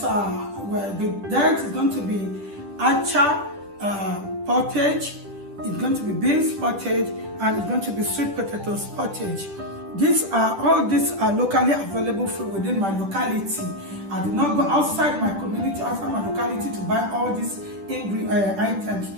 where the diet is going to be acha pottage, it's going to be beans pottage, and it's going to be sweet potatoes pottage. All these are locally available food within my locality. I did not go outside my community, outside my locality to buy all these items.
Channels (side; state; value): left; late; 10 ms